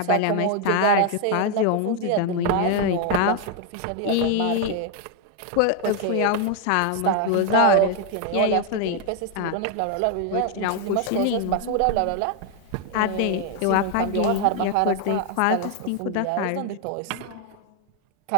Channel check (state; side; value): different; both; correlation 0.01